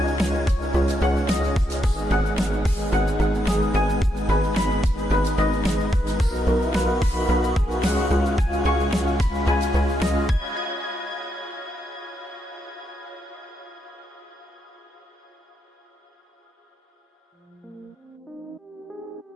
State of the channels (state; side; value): normal; both; correlation 0.81